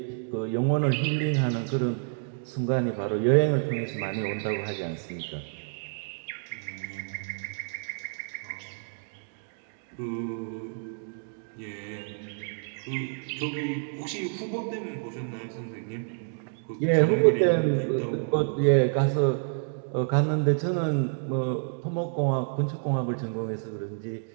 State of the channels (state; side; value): silent; left; digital silence